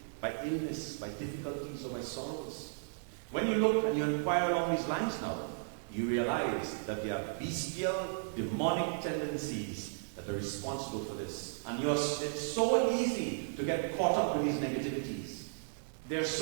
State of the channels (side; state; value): left; silent; digital silence